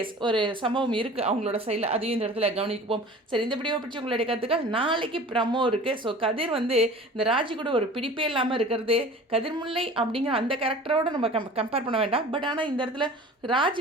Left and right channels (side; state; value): both; normal; correlation 0.42